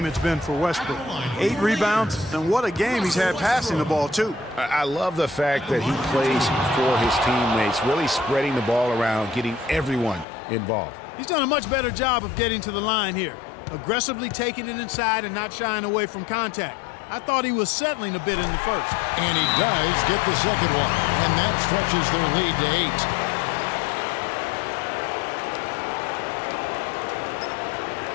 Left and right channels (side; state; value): right; drops out; at 10.2 s